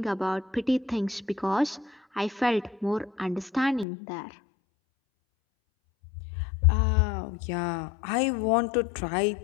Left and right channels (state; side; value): drops out; right; at 3.9 s